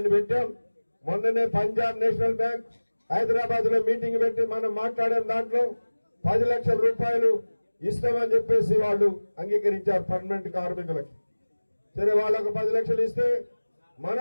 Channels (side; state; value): both; inverted; correlation -1.00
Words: పెట్టాం. మొన్ననే పంజాబ్ నేషనల్ బ్యాంక్ హైదరాబాద్ లో మీటింగ్ పెట్టి మనం మాట్లాడాం. దాంట్లో 10 లక్షల రూపాయలు ఇస్తామని చెప్పేసి వాళ్ళు అంగీకరించారు పర్మనెంట్ కార్మికులకి. సరే వాళ్ళకు 10 లక్షలు ఇస్తే